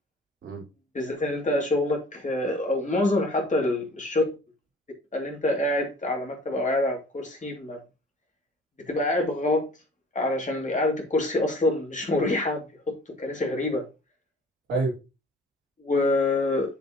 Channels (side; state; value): both; normal; correlation 0.49